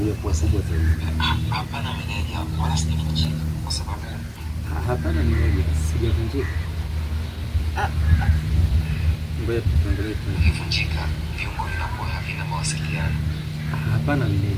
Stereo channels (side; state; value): both; identical; correlation 1.00